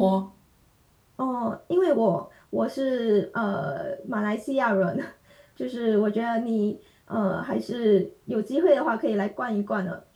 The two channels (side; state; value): both; identical; correlation 1.00